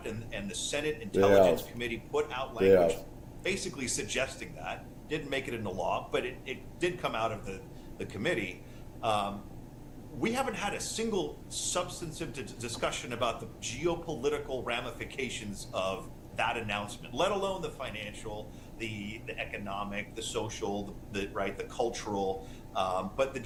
and the Senate Intelligence Committee put out language basically suggesting that, didn't make it into law, but it did come out of the committee. We haven't had a single substantive discussion about the geopolitical ramifications of that announcement, let alone the financial, the economic, the social, the cultural, but the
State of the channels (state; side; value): identical; both; correlation 1.00